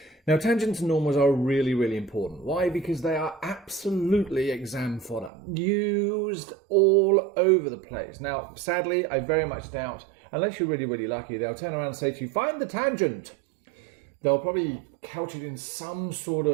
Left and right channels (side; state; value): left; drops out; at 5.3 s